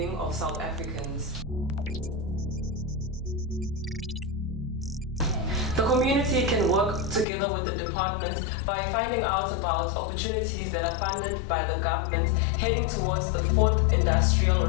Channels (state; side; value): drops out; right; at 7.2 s